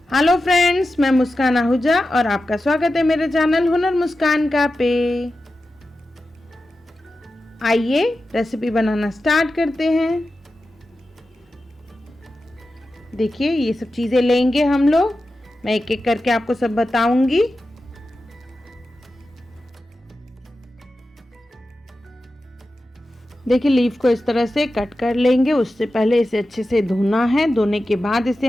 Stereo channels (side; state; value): both; normal; correlation 0.92